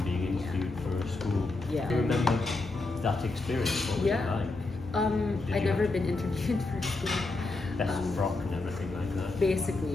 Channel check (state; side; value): quieter; right; 3.3 dB